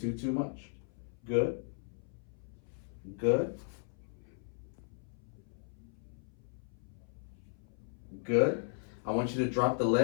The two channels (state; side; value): silent; right; 53 dB below the other